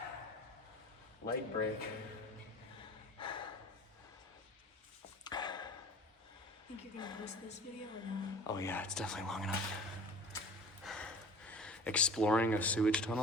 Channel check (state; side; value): normal; both; correlation 0.42